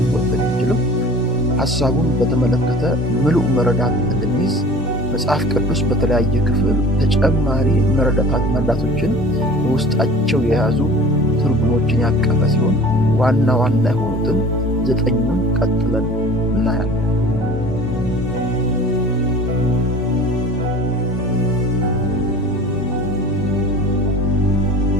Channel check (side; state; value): both; normal; correlation 0.42